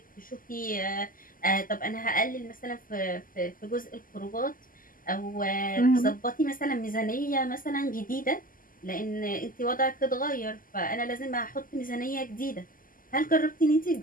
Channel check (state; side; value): late; right; 0.41 ms